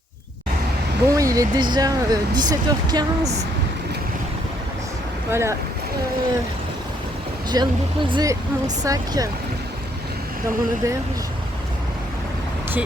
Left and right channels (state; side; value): normal; both; correlation 0.69